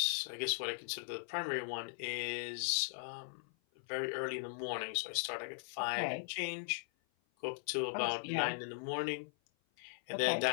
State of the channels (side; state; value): right; silent; 52 dB below the other